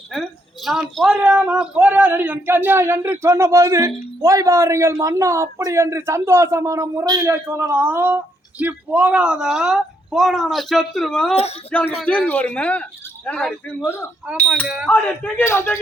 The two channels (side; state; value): both; normal; correlation 0.74